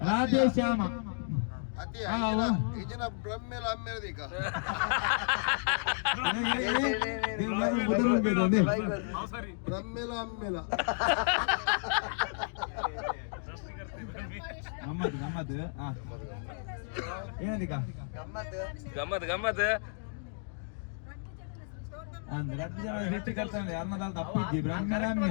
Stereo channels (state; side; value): silent; right; digital silence